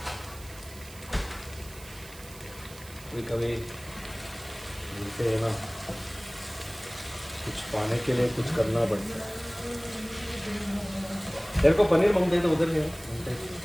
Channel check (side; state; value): right; noise; hiss, 17 dB below the sound